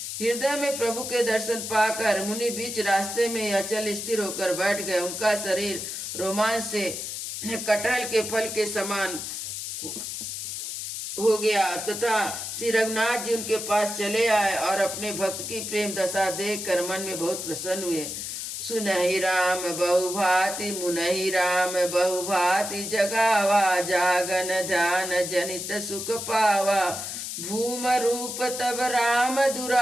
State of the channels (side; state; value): left; noise; hiss, 6 dB below the sound